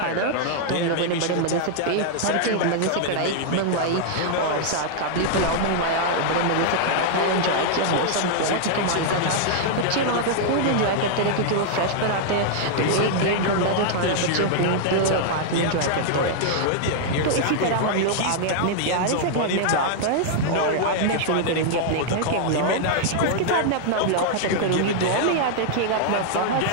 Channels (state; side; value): different; both; correlation -0.01